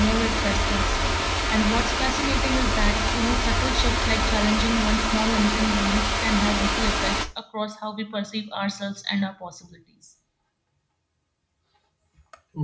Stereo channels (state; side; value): identical; both; correlation 1.00